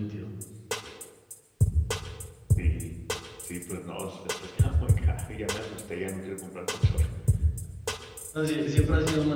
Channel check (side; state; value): both; identical; correlation 1.00